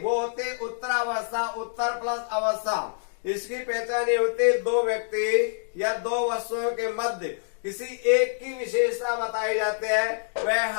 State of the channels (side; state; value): right; silent; digital silence